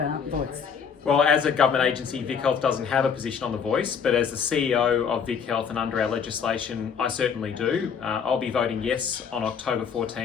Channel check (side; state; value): right; quieter; 6.8 dB